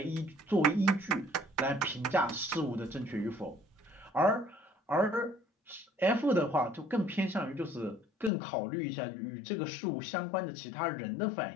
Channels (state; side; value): drops out; right; at 8.3 s